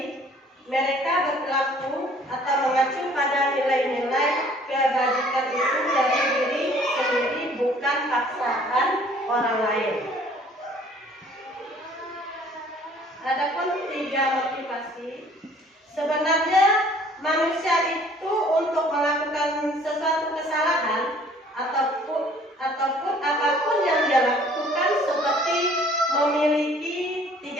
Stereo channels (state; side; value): normal; both; correlation 0.56